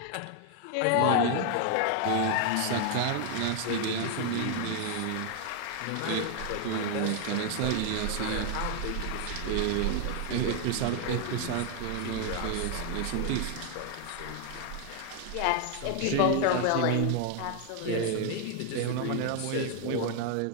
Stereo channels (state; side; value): different; both; correlation 0.01